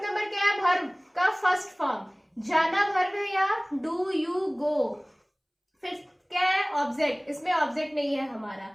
नंबर क्या है, वर्ब का फर्स्ट फॉर्म, जाना वर्ब है या डू यू गो। फिर क्या है, ऑब्जेक्ट, इसमें ऑब्जेक्ट नहीं है हमारा,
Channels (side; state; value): both; identical; correlation 1.00